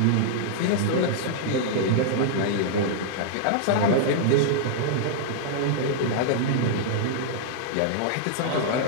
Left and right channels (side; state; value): both; different; correlation -0.01